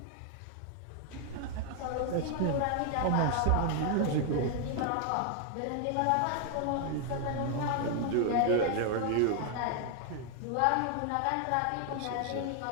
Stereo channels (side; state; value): both; different; correlation 0.00